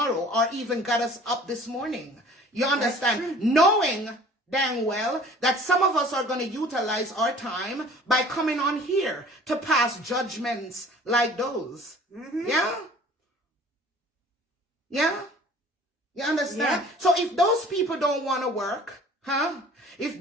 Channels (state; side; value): normal; both; correlation 0.49